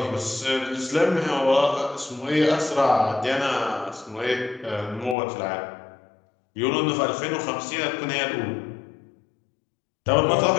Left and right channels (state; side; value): drops out; right; at 5.2 s